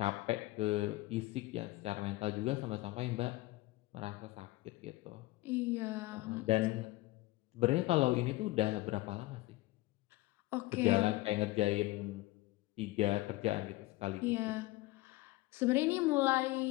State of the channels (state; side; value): quieter; right; 19.5 dB